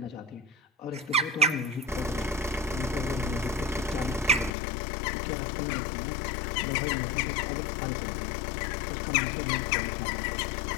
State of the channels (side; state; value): right; drops out; at 4.5 s